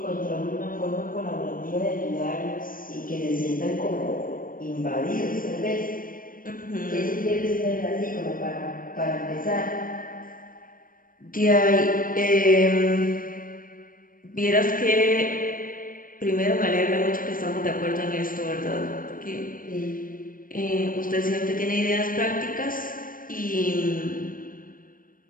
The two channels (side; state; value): right; late; 0.40 ms